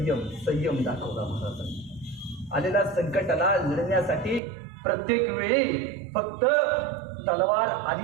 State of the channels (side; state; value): left; drops out; at 4.4 s